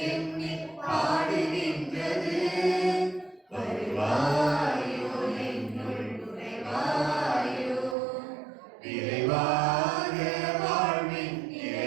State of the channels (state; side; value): drops out; left; at 8.0 s